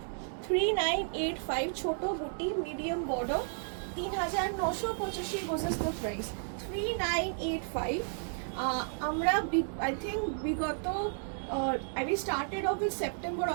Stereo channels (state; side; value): silent; left; digital silence